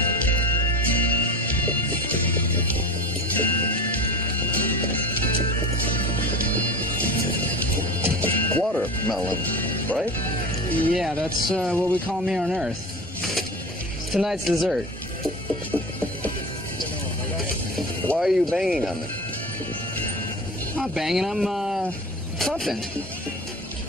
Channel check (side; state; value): both; normal; correlation 0.31